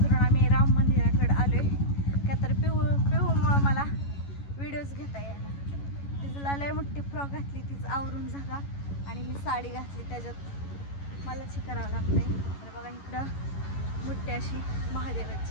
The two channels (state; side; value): late; right; 11 ms